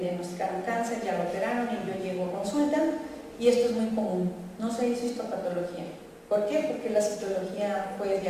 cáncer, ya lo operaron y yo llego a consulta, y esto es muy común, no se hizo histopatología. ¿Por qué? Porque la citología fue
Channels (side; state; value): both; identical; correlation 1.00